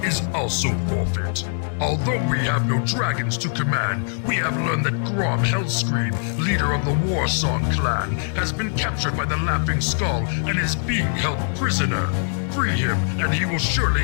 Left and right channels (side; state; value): right; silent; 64 dB below the other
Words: is also forfeit. Although we have no dragons to command, we have learned that Grom Hellscream, leader of the Warsong clan, has been captured by the Laughing Skull and is being held prisoner. Free him, and he will surely